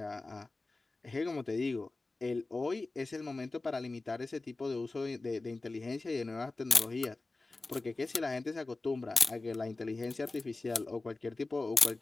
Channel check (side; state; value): right; quieter; 3.3 dB